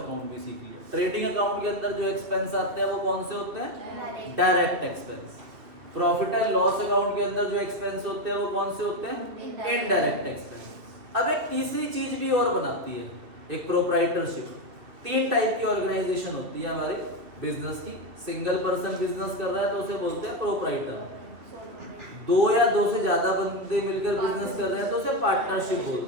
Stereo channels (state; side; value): late; left; 2.6 ms